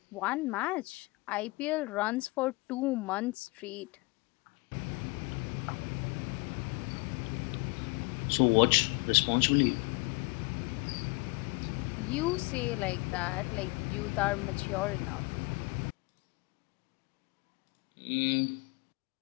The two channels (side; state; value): right; quieter; 25.8 dB